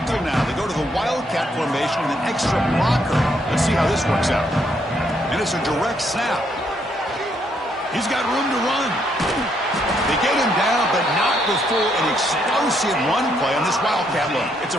now. They go to the Wildcat formation with an extra blocker. Let's see how this works out. And it's a direct snap. He's got room to run. They get him down, but not before an explosive run play on this Wildcat look. It's a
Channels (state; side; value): normal; both; correlation 0.73